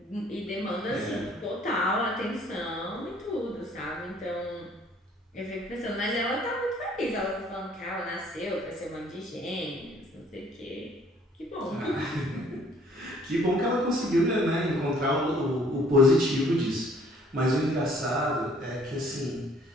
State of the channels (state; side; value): normal; both; correlation 0.59